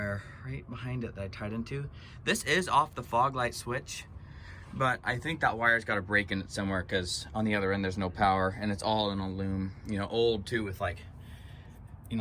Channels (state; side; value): identical; both; correlation 1.00